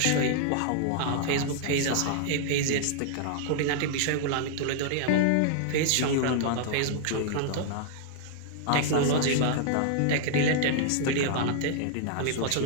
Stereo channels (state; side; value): different; both; correlation -0.01